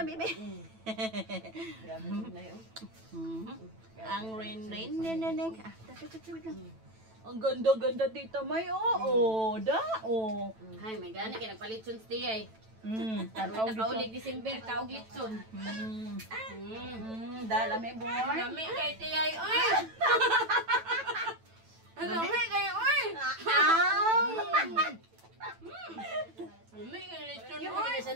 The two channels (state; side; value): late; left; 9.1 ms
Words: bibi. Ang rain neneng. Ang ganda dito may Hay, may gani kay nagpalit sun stay ay. Tanaw Nakaulig December kaog litson. Dala may boy. Lami kay tiyay oy. Lami kay oy. Lami kay litson Yung oy. mga